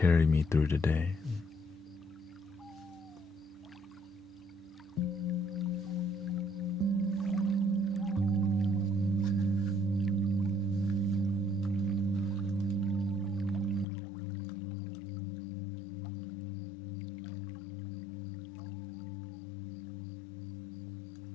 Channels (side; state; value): right; drops out; at 13.9 s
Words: me through the day.